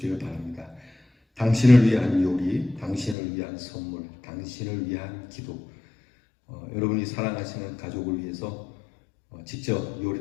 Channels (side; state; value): right; drops out; at 3.2 s